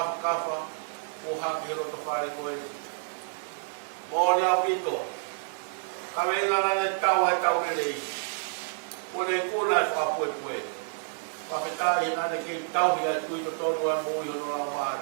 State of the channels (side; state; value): left; silent; 57 dB below the other